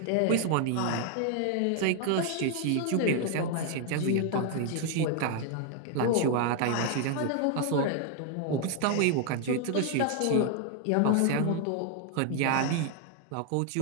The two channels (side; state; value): both; different; correlation 0.00